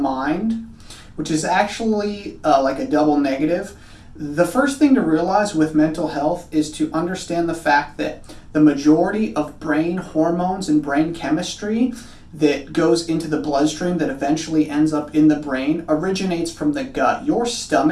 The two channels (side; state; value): both; identical; correlation 1.00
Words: which is actually like a double negative. The first thing to realize with mental health is to understand the fact that the majority of brain hormones and brain chemistry that goes into the bloodstream that eventually ends up in the brain originates from the gut. Your